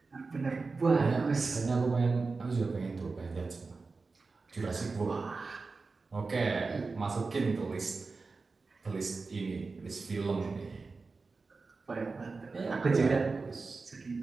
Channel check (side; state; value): left; quieter; 4.1 dB